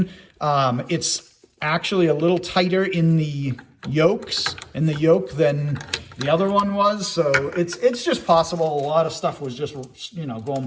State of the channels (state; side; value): identical; both; correlation 1.00